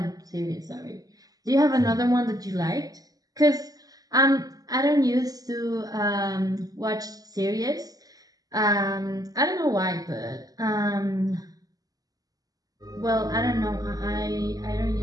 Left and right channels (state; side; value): late; left; 0.18 ms